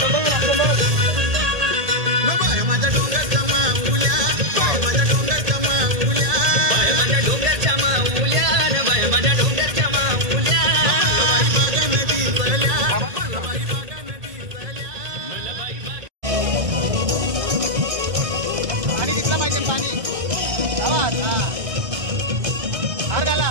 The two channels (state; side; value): late; left; 1.8 ms